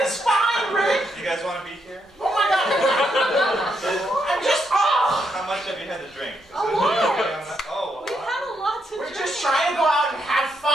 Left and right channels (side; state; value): both; normal; correlation 0.79